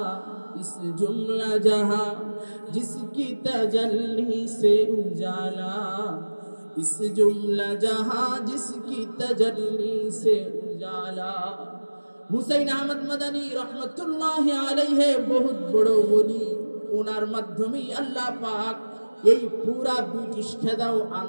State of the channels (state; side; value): inverted; both; correlation -1.00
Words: इस जुमला जहां जिसकी तजल्ली से उजाला, इस जुमला जहां जिसकी तजल्ली से उजाला। হুসাইন আহমদ মাদানী রহমতুল্লাহি আলাইহি বহুত বড় ওলি, ওনার মাধ্যমেই আল্লাহ পাক এই পুরা ব্রিটিশ খেদাও